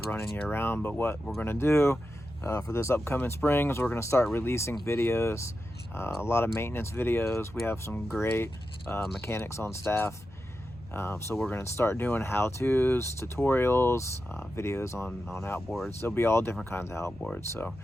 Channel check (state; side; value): normal; both; correlation 0.90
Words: running year round, but what we're going to do for this upcoming spring is we're going to start releasing videos, a lot of maintenance videos. We have some great mechanics on staff, so we're going to start doing how-tos, tutorials, videos on outboards. There'll be all different kinds of outboards. So